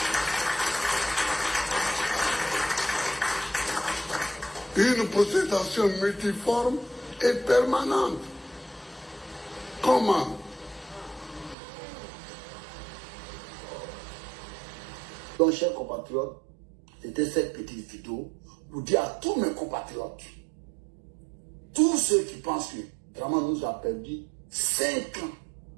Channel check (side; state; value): left; drops out; at 11.6 s